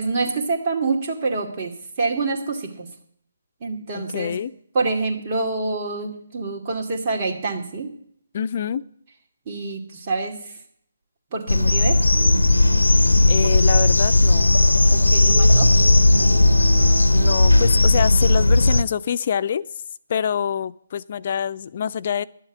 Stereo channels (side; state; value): both; inverted; correlation -0.93